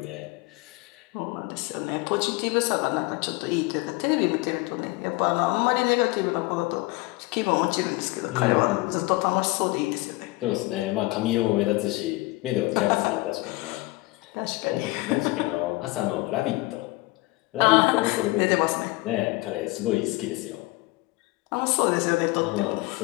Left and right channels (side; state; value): right; quieter; 21.5 dB